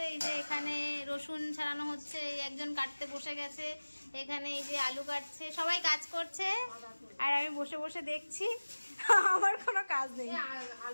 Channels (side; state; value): both; inverted; correlation -1.00